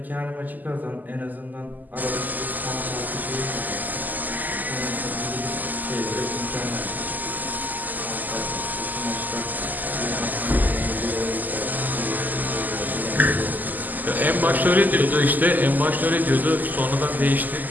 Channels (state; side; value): late; left; 0.084 ms